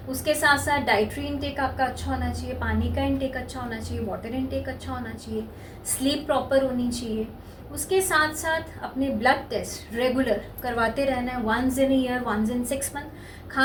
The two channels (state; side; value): identical; both; correlation 1.00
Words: उसके साथ साथ डाइटरी इनटेक आपका अच्छा होना चाहिए, पानी का इनटेक अच्छा होना चाहिए, वाटर इनटेक अच्छा होना चाहिए, स्लीप प्रॉपर होनी चाहिए। उसके साथ साथ अपने ब्लड टेस्ट रेगुलर करवाते रहना है, once in year, once in 6 month.